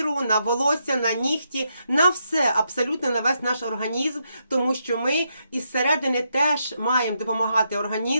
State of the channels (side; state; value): both; inverted; correlation -0.80